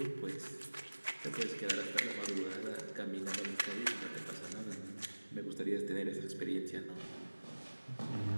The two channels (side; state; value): both; inverted; correlation -1.00